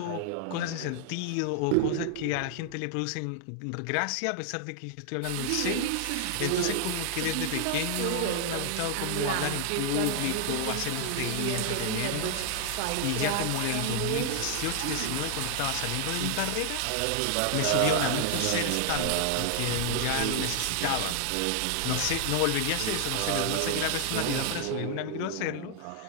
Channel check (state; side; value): different; both; correlation 0.00